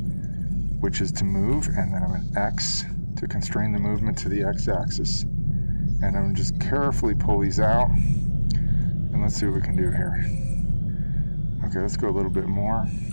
which is to move, and then I'm going to X to constrain the movement to the x-axis. And I'm going to just carefully pull these out, and let's see what we can do here. Okay, let's go a little bit more.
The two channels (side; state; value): both; inverted; correlation -1.00